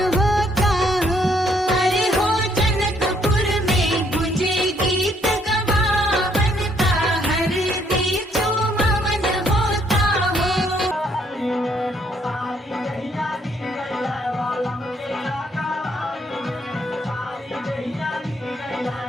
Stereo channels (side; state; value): both; normal; correlation 0.68